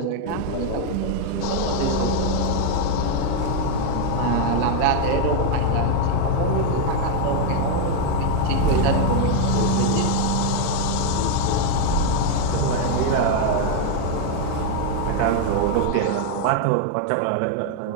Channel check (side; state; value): both; different; correlation 0.01